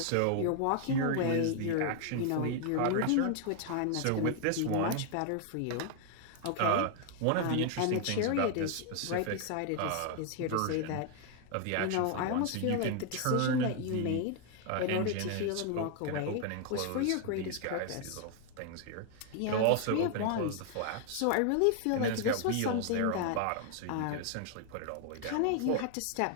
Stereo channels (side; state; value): both; different; correlation 0.00